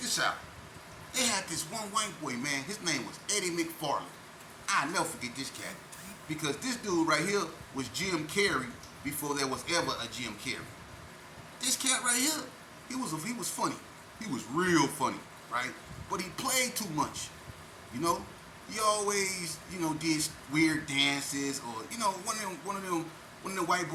out. They had this one white boy, man. His name was Eddie McFarland. I'll never forget this cat. Because this dude right here was Jim Carrey before there was ever a Jim Carrey. This cat right here, he was funny. He was real funny, right? But he played too much, you know? He always, you know, did weird dances or, you know, one of them white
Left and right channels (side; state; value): both; identical; correlation 1.00